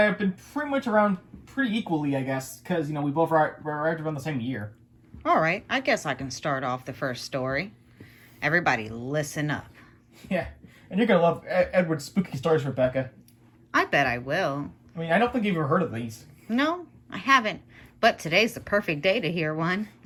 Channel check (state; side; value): identical; both; correlation 1.00